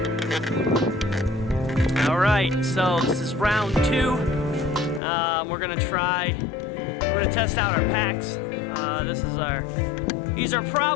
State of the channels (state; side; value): drops out; right; at 5.0 s